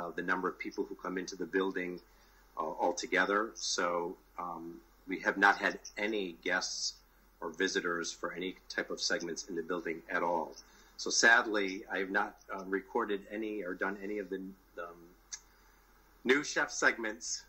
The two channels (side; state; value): both; identical; correlation 1.00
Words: number of people who come into the building altogether. So we have not had any guests or visitors for any type of segments in the building at all. So sadly, I have not recorded any or done any of the new chef segments